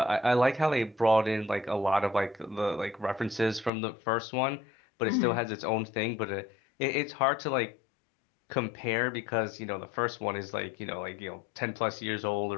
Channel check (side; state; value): right; drops out; at 3.7 s